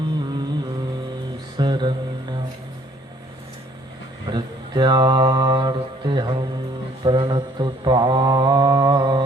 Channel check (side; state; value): both; normal; correlation 0.60